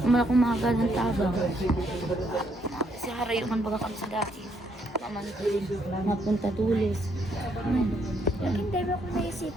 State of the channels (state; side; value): normal; both; correlation 0.72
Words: Naman akong mahagal ng tabang. Kasi harayuman baga kami sa dati. Mapunta tulis. Hindi ba kung